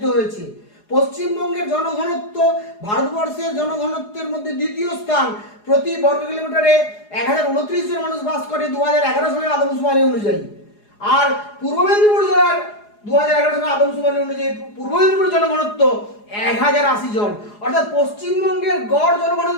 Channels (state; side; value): late; right; 4.8 ms